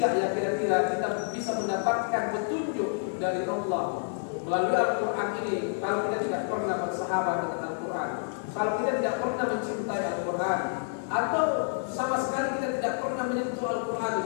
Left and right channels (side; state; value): right; silent; 59 dB below the other